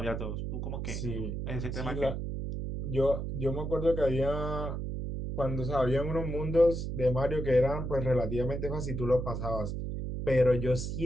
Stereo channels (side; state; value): right; noise; hum, 4 dB below the sound